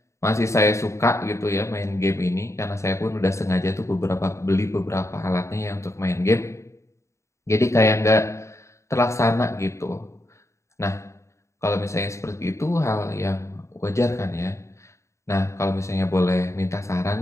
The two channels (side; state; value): right; late; 0.14 ms